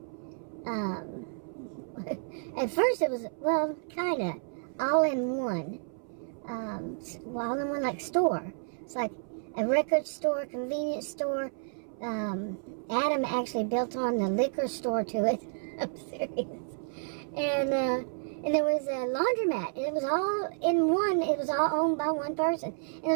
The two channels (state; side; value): silent; left; 57 dB below the other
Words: At first it was, well, kind of all in one. All in one, like, store. It's like a record store, convenience store. Adam actually built on the liquor store to it. I'm serious. And there was a laundromat. And it was all in one. It was all owned by one person. And there